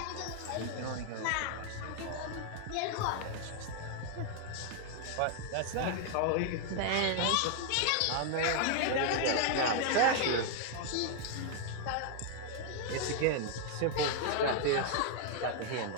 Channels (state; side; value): different; both; correlation 0.00